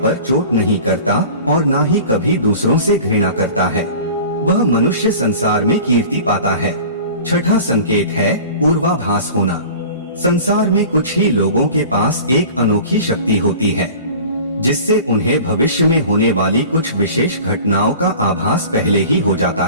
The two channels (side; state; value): both; inverted; correlation -0.41